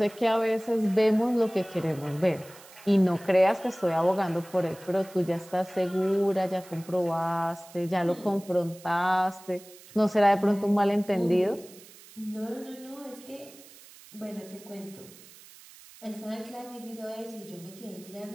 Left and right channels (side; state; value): right; noise; hiss, 21 dB below the sound